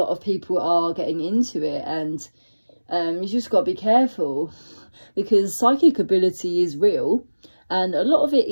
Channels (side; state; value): both; inverted; correlation -1.00